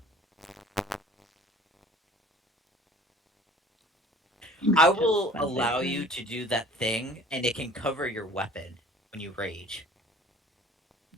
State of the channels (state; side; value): normal; both; correlation 0.49